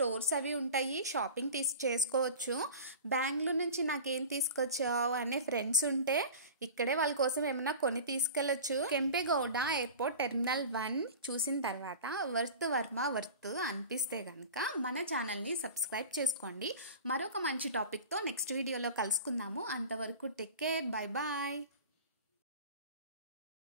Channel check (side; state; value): both; inverted; correlation -0.35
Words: అవి ఉంటాయి, షాపింగ్ చేసుకోవచ్చు. బెంగళూరు నుంచి నాకేం తీసుకొచ్చావు అనే ఫ్రెండ్స్ ఉంటే ఇక్కడే వాళ్ళ కోసం ఏమైనా కొని తీసుకెళ్ళొచ్చు. కెంపెగౌడ ఎయిర్పోర్ట్ టెర్మినల్ 1 చూసిన తర్వాత వర్త్ అనిపిస్తే కనుక మన ఛానల్ని సబ్స్క్రైబ్ చేసుకోండి. మరొక మంచి టాపిక్తో నెక్స్ట్ వీడియోలో కలుసుకుందాము. అంతవరకు టేక్ కేర్, బై బాయ్.